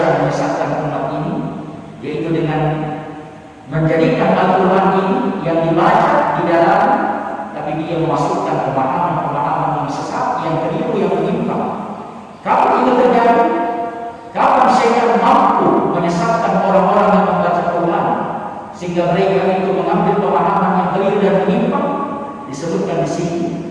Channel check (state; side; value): identical; both; correlation 1.00